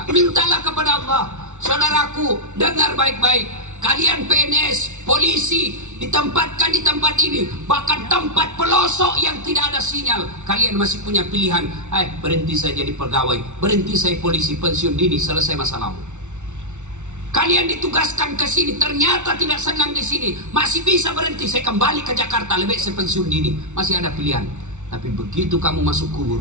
Mintalah kepada Allah. Saudaraku, dengar baik-baik. Kalian PNS, polisi, ditempatkan di tempat ini, bahkan tempat pelosok yang tidak ada sinyal. Kalian masih punya pilihan. Berhenti saya jadi pegawai, berhenti saya polisi, pensiun dini, selesai masalahmu. Kalian ditugaskan ke sini, ternyata tidak senang di sini, masih bisa berhenti, saya kembali ke Jakarta, lebih saya pensiun dini. Masih ada pilihan. Tapi begitu kamu masuk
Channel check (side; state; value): left; late; 0.83 ms